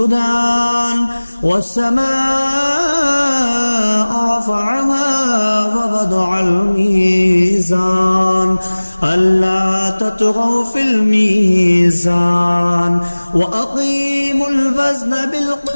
والسماء رفعها ووضع الميزان ألا تطغوا في الميزان وأقيموا الوزن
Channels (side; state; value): both; inverted; correlation -1.00